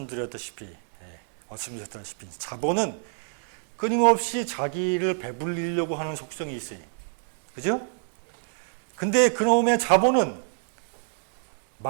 자본은 끊임없이 자기를 배불리려고 하는 속성이 있어요. 그죠? 근데 그놈의 자본은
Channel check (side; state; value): left; silent; 60 dB below the other